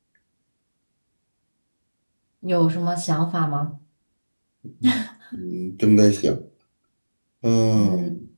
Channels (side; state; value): both; inverted; correlation -1.00